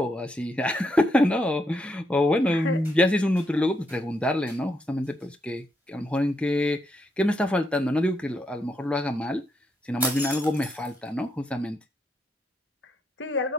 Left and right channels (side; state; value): both; normal; correlation 0.79